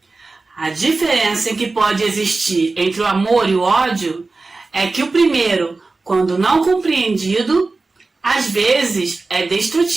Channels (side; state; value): left; quieter; 3.7 dB